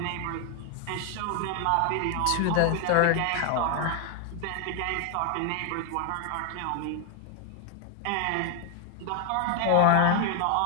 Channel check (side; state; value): both; different; correlation 0.01